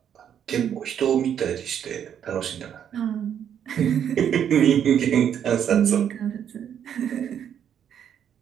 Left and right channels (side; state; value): left; quieter; 9.0 dB